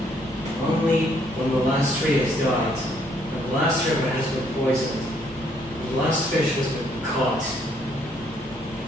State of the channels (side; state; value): both; normal; correlation 0.68